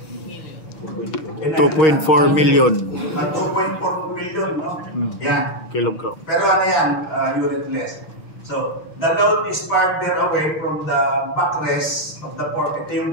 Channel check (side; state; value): right; late; 6.4 ms